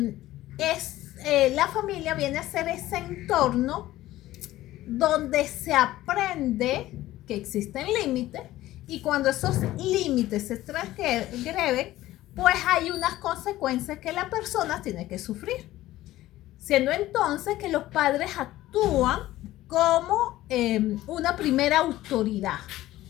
la familia viene a ser ese entorno donde se aprende que existen límites y cuando esos límites se transgreden, pues hay unas consecuencias que la persona tiene que sufrir. Siendo entonces que los padres actúan como una primera autoridad.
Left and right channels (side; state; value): right; quieter; 15.6 dB